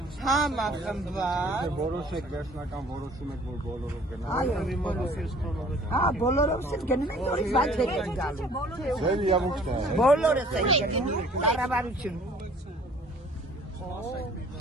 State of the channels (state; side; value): normal; both; correlation 0.53